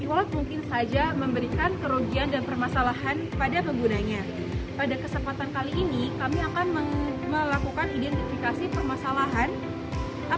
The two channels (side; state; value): both; identical; correlation 1.00